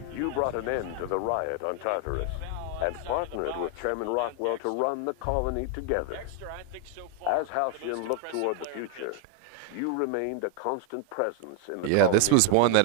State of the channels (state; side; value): different; both; correlation 0.01